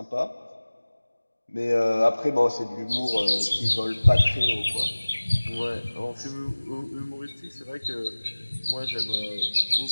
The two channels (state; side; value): inverted; both; correlation -1.00